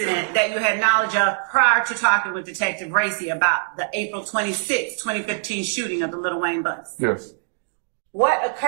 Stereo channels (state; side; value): silent; left; digital silence